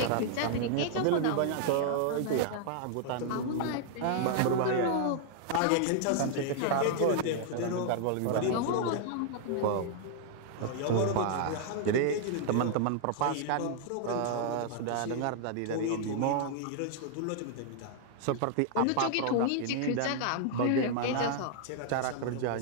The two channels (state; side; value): different; both; correlation -0.01